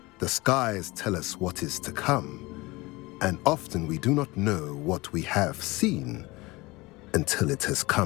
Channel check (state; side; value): quieter; right; 22.4 dB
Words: The skies tell us what is to come, and often we do not know what we have seen until it has